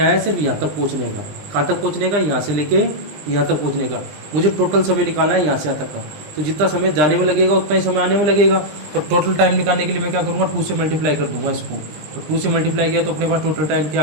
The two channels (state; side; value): late; left; 20 ms